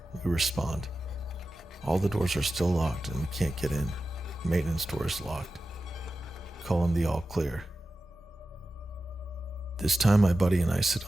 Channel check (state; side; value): normal; both; correlation 0.93